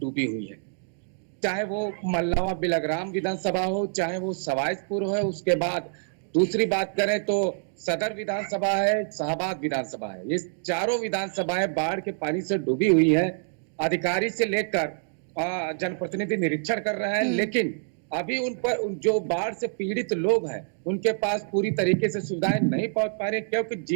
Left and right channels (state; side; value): silent; left; digital silence